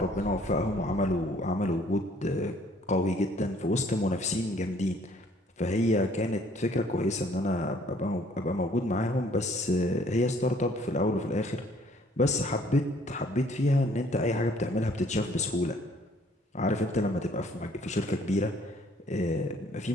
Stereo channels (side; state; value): both; normal; correlation 0.60